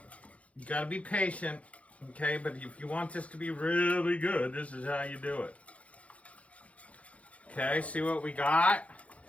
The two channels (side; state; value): right; late; 0.065 ms